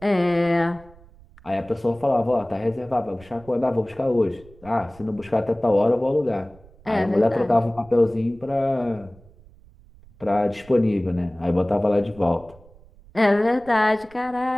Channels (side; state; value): right; noise; rumble, 25 dB below the sound